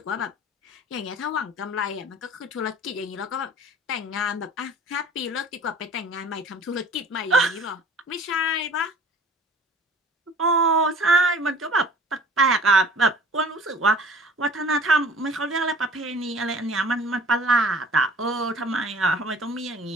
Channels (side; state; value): both; normal; correlation 0.48